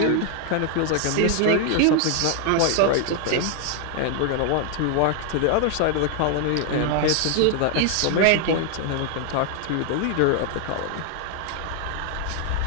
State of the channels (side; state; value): both; different; correlation 0.00